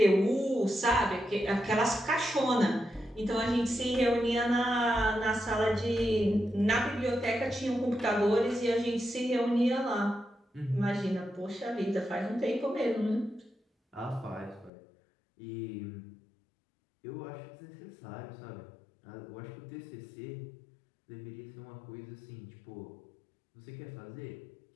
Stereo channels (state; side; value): drops out; right; at 14.7 s